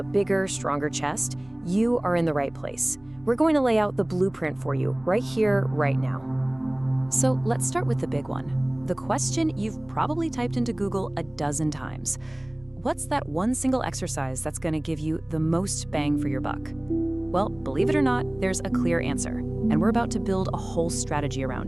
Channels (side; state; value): right; noise; rumble, 29 dB below the sound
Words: bigger, stronger chest, you are in the right place. We're going to lay out the blueprint for you right here, right now. So let's start with the big one. The question you've probably typed into Google a dozen times. What's that one single exercise that's going to give you the most bang for your buck? Well, believe it or not, there's a clear answer, and we're about to build a whole strategy